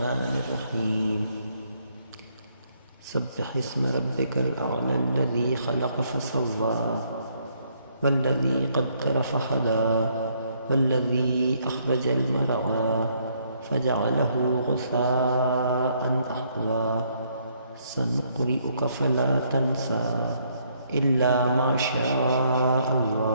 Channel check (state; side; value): inverted; both; correlation -0.70